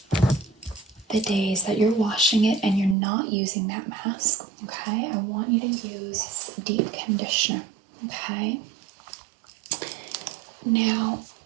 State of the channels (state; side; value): drops out; left; at 3.0 s